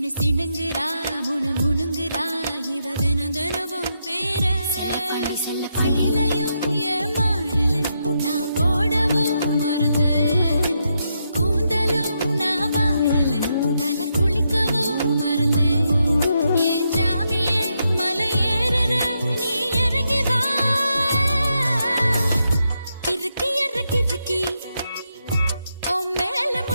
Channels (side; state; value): both; inverted; correlation -0.82